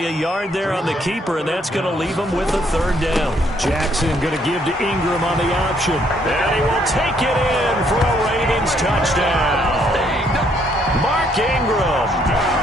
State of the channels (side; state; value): both; normal; correlation 0.69